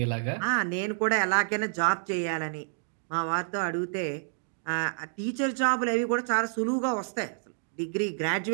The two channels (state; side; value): silent; left; digital silence